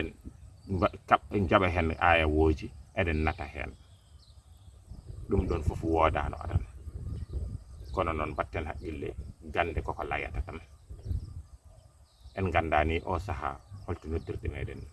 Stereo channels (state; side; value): identical; both; correlation 1.00